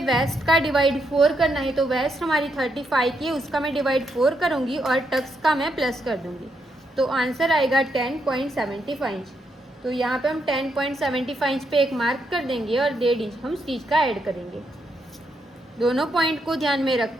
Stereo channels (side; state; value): both; normal; correlation 0.80